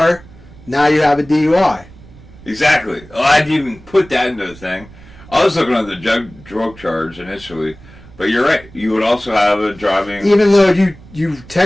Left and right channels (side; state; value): right; noise; rumble, 21 dB below the sound